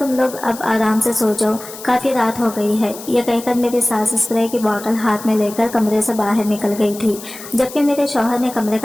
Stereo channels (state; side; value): noise; left; hiss, 14 dB below the sound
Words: लोग अब आराम से सो जाओ, काफी रात हो गई है। यह कहकर मेरी सास स्प्रे की बोतल हाथ में लेकर कमरे से बाहर निकल गई थी, जबकि मेरे शौहर ने कमरे